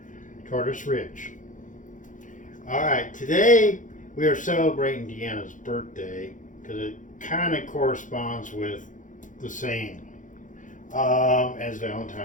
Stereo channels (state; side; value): late; right; 0.37 ms